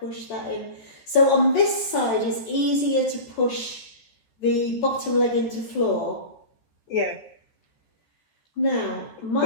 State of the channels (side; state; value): right; late; 13 ms